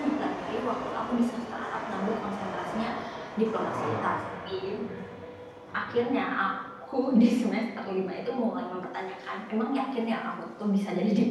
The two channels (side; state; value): both; identical; correlation 1.00